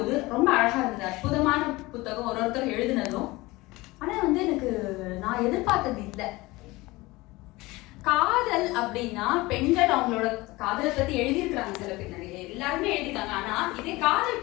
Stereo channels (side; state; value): right; quieter; 21.1 dB